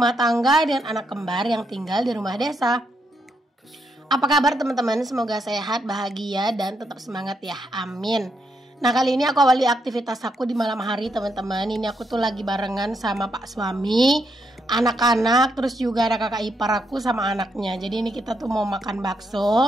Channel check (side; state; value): both; normal; correlation 0.79